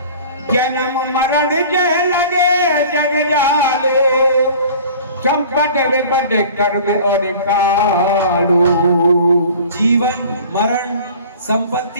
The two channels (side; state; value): both; inverted; correlation -0.45